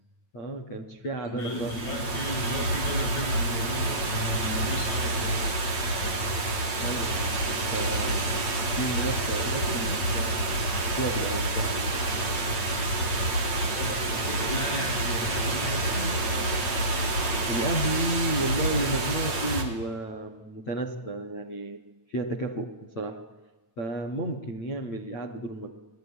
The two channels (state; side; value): late; right; 8.9 ms